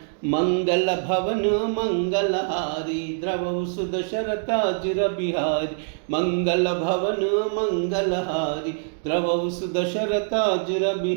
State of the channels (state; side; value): silent; left; digital silence